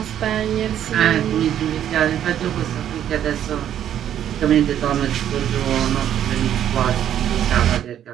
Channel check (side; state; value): left; quieter; 10.4 dB